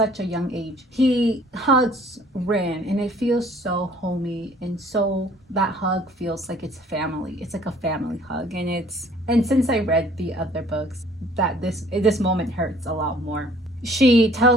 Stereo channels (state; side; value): normal; both; correlation 0.56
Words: a young age. He hugs Rin and it feels so homey, and so that hug feels like it's family. It's like a family hug, and since I read the other books, that this moment hurts a lot more. She